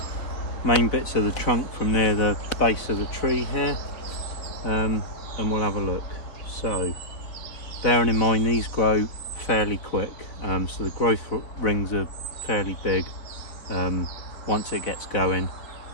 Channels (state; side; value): late; right; 4.0 ms